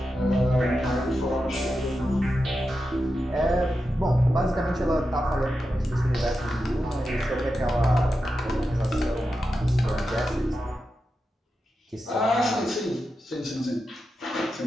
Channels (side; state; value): both; normal; correlation 0.89